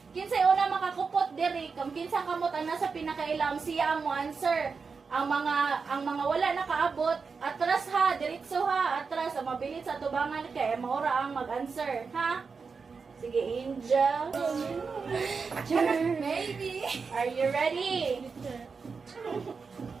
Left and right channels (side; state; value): left; quieter; 5.1 dB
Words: una makakupot diri, kung kinsa kamot ang nasa pinakailam siya ang mo answer. ang mga wala nakaabot, atras ha, diretso ha, atras, ang mabilis sa tubangan kay maura ang mag-answer, ha? Sige, Angel. Maybe. Are you ready?